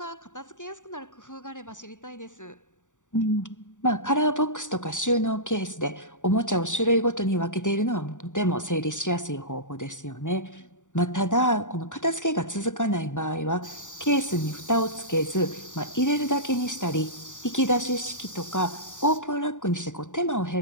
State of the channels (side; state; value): right; late; 0.86 ms